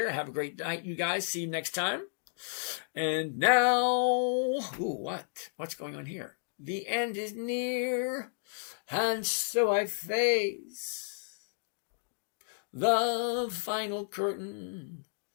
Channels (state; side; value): silent; right; digital silence